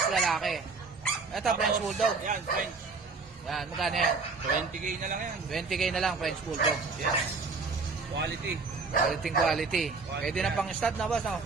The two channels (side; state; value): left; quieter; 4.3 dB